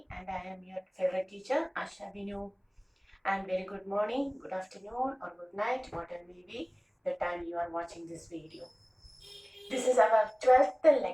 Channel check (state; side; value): identical; both; correlation 1.00